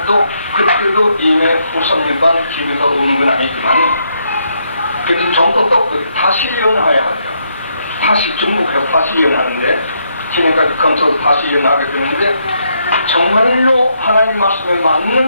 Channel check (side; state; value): both; inverted; correlation -0.76